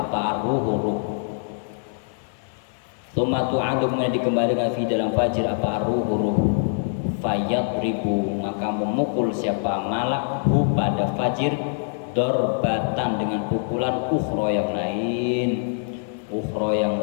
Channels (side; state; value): right; silent; 61 dB below the other